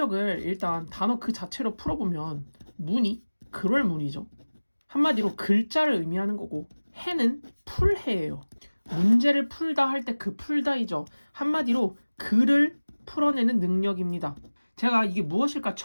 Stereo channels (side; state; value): both; inverted; correlation -1.00